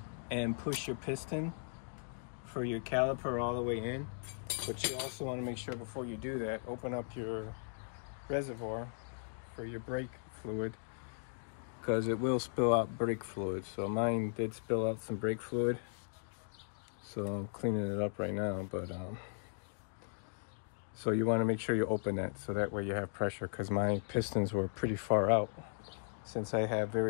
and push your piston for your caliper all the way in. But you also want to make sure before you do that, open up your reservoir for your brake fluid, because it will spill out brake fluid. So mine did spill out some brake fluid, so I'm cleaning it up right now. But so you want to make sure you open that, so that way you have pressure, because my pistons were pretty far out since I have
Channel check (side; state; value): right; silent; digital silence